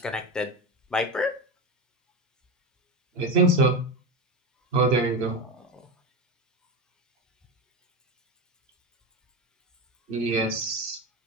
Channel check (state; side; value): normal; both; correlation 0.19